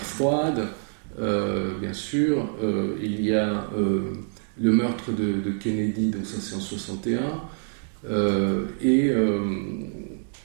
bien sûr, il y a le meurtre de Kennedy, donc ça c'est en 61, et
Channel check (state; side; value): silent; left; digital silence